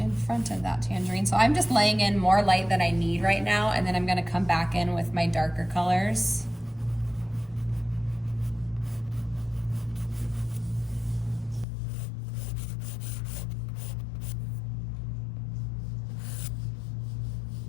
front of that tangerine. So I'm just laying in more light than I need right now, and then I'm gonna come back in with my darker colors.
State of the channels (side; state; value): right; drops out; at 11.7 s